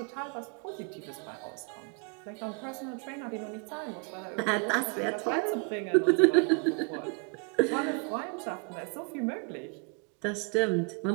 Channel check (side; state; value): left; quieter; 34.4 dB